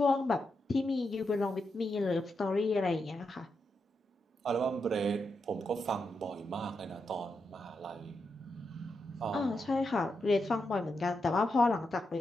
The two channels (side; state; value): both; normal; correlation 0.85